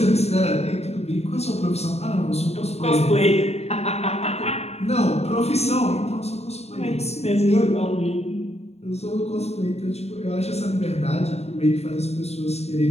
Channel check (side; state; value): right; late; 0.31 ms